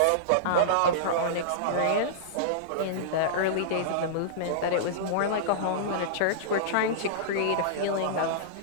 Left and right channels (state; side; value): different; both; correlation -0.03